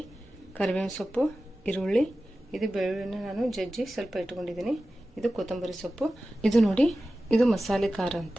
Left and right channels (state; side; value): normal; both; correlation 0.95